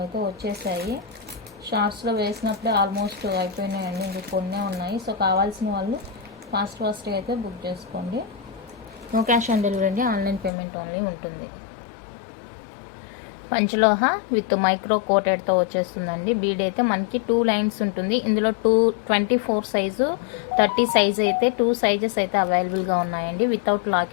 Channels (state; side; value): drops out; right; at 10.5 s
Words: అయితే వచ్చేసాయి. షార్ట్స్లో వేసినప్పుడే ఆల్మోస్ట్ అయిపోయినాయండి, ఇంకా కొన్నే ఉన్నాయి. సో కావాల్సిన వాళ్ళు ఫాస్ట్గా అయితే బుక్ చేసుకోండి. నో క్యాష్ ఆన్ డెలివరీ అండి, ఆన్లైన్ పేమెంట్ ఓన్లీ ఉంటుంది. పంచలోహ విత్ మైక్రో కోటెడ్తో వచ్చేస్తుందండి. బీడ్ అయితే మనకి 2 లైన్స్ ఉంటుంది. ఇందులో 24 సైజు 30 సైజు అయితే 2 సైజెస్ అయితే అవైలబుల్గా ఉన్నాయండి. వితౌట్